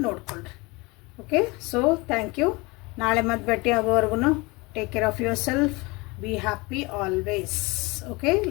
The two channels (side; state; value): right; quieter; 25.3 dB